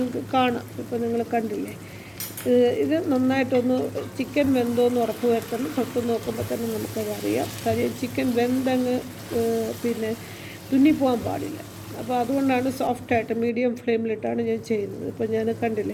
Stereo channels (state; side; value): identical; both; correlation 1.00